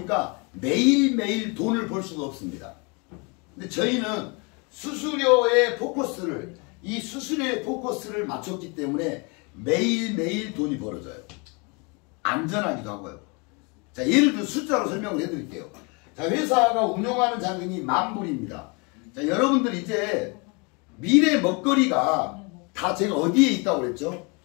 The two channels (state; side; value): quieter; right; 31.1 dB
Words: 매일매일 돈을 벌 수가 없습니다. 근데 저희는 수수료의 포커스를 이 수수료의 포커스를 맞췄기 때문에 매일매일 돈이 벌어져요. 안전하기도 하고요. 자, 예를 들어 숫자로 설명을 해드릴게요. 자, 회사가 운영하는 자금이 10,000불입니다. 자, 여러분들 이제 미래 먹거리가 다 제가 어디에 있다고 그랬죠?